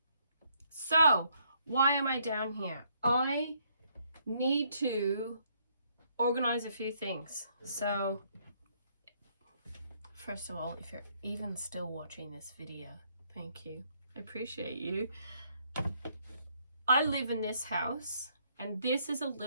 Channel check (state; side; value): inverted; both; correlation -0.69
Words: So, why am I down here? I need to organize a few things. So, first of all, if you're even still watching this video, thank you. I appreciate you. I live in this house And this is a